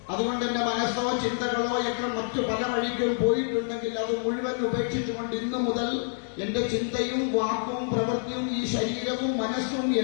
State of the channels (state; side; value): silent; right; digital silence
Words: അതുകൊണ്ട് എന്റെ മനസ്സോ ചിന്തകളോ ഒക്കെ മറ്റു പല വഴിക്കും പോയിട്ടുണ്ടെങ്കിൽ അത് മുഴുവൻ ഉപേക്ഷിച്ചുകൊണ്ട് ഇന്നു മുതൽ എന്റെ ചിന്തയും വാക്കും പ്രവൃത്തിയും ഈ ശരീരവും മനസ്സും